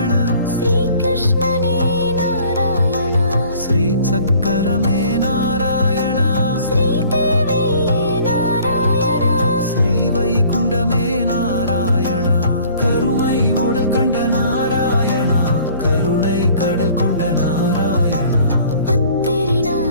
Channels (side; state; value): both; inverted; correlation -0.54